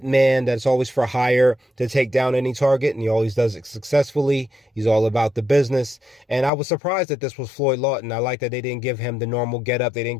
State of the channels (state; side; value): drops out; right; at 6.5 s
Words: that's always for hire to take down any target, and he always does it successfully. He's all about the business. And I was surprised that this was Floyd Lawton. I like that they didn't give him the normal getup. They didn't